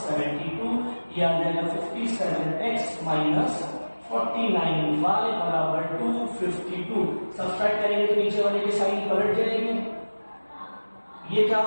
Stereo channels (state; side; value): inverted; both; correlation -1.00